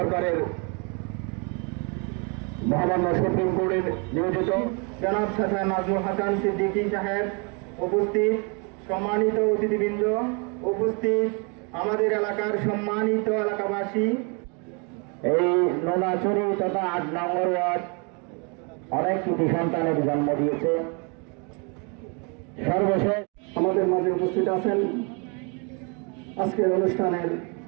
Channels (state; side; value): quieter; left; 33.9 dB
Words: মহামান্য সুপ্রিম কোর্টের নিয়োজিত জনাব শাহ নাজমুল হাসান সিদ্দিকী সাহেব উপস্থিত, সম্মানিত অতিথিবৃন্দ উপস্থিত, আমাদের এলাকার সম্মানিত এলাকাবাসী, এই নোনাচুরি তথা ৮ নম্বর ওয়ার্ড অনেক কৃতি সন্তানের জন্ম দিয়েছে। সর্বশেষ আমাদের মাঝে উপস্থিত আছেন আজকের অনুষ্ঠানের